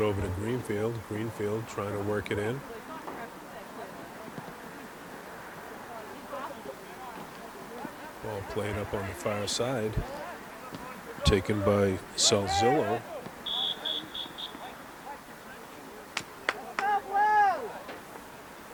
over to Greenfield. Greenfield trying to work it in. Ball played up on the far side. Taken by Salzillo.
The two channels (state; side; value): identical; both; correlation 1.00